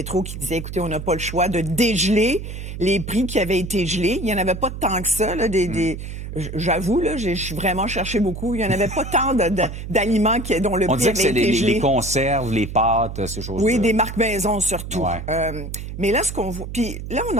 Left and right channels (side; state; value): right; noise; hum, 8 dB below the sound